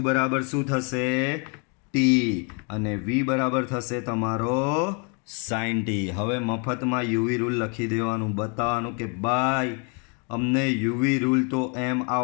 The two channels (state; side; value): quieter; right; 35.8 dB